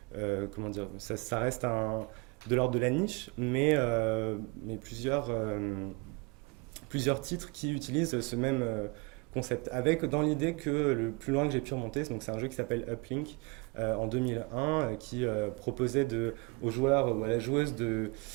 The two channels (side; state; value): left; quieter; 28.2 dB